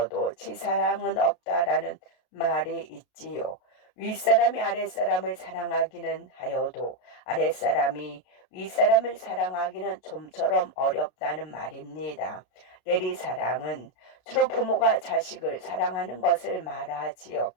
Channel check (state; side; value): late; right; 32 ms